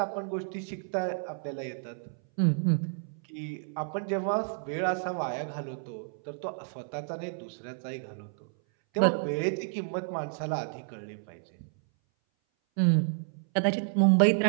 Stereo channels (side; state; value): left; silent; 58 dB below the other